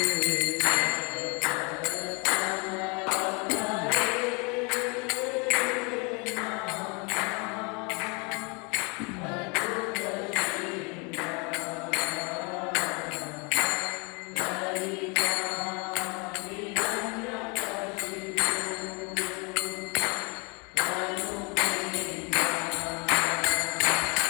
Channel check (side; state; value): right; quieter; 31.7 dB